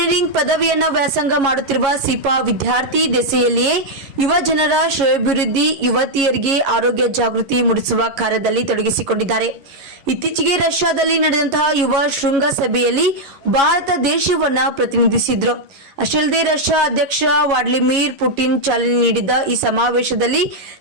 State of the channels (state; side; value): late; left; 11 ms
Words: ಪದವಿಯನ್ನ ವ್ಯಾಸಂಗ ಮಾಡುತ್ತಿರುವ ಸೀಪಾ ವಿದ್ಯಾರ್ಥಿ ದೆಸೆಯಲ್ಲಿಯೇ ಯುವ ಜನರ ಶ್ರೇಯೋಭಿವೃದ್ಧಿ, ಯುವತಿಯರಿಗೆ ಆರೋಗ್ಯ ಜಾಗೃತಿ ಮೂಡಿಸುವ ಕಾರ್ಯದಲ್ಲಿ ತೊಡಗಿಸಿಕೊಂಡಿದ್ದಾರೆ. ಇತ್ತೀಚೆಗೆ ರಷ್ಯಾದಲ್ಲಿ ನಡೆದಂತಹ ಯುವ ಶೃಂಗಸಭೆಯಲ್ಲಿ ಭಾರತ ದೇಶವನ್ನ ಪ್ರತಿನಿಧಿಸಿದ್ರು. ಅಷ್ಟೇ ಅಲ್ಲದೆ ರಷ್ಯಾ ಅಧ್ಯಕ್ಷ ವ್ಲಾಡಿಮಿರ್ ಪುಟಿನ್ ಚಾಲನೆ ನೀಡಿದ್ದ ಈ ಸಮಾವೇಶದಲ್ಲಿ